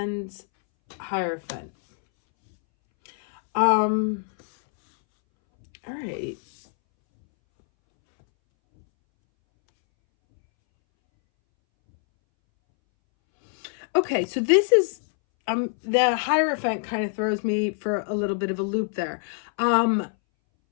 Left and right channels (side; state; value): right; silent; 62 dB below the other